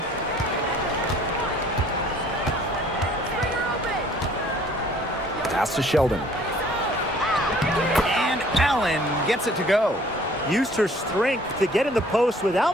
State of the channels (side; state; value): both; normal; correlation 0.55